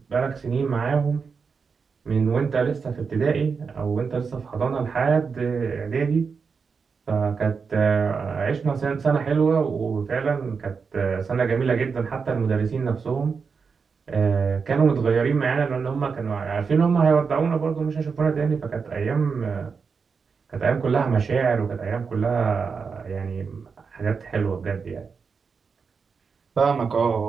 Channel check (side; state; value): left; quieter; 5.5 dB